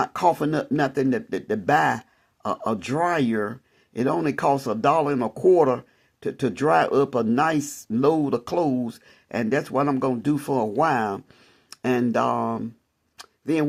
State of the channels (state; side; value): identical; both; correlation 1.00